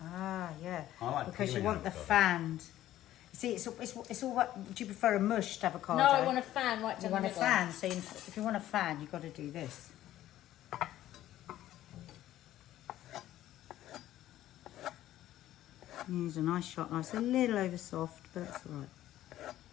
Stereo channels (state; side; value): quieter; right; 13.6 dB